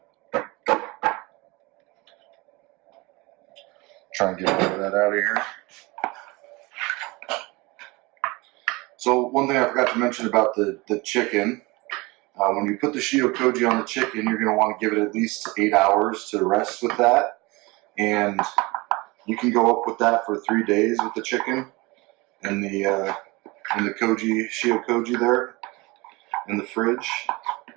Try and get all of that out of here. So one thing I forgot to mention about the chicken, when you put the Shio Koji on the chicken, you're going to want to give it at least 8 hours to rest with that, and you can go up with that for 3 days with the chicken in the koji, Shio Koji there in the fridge.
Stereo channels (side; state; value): left; quieter; 24.1 dB